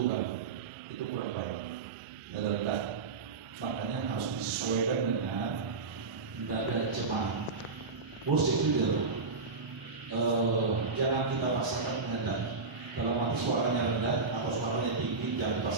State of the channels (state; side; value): quieter; left; 4.3 dB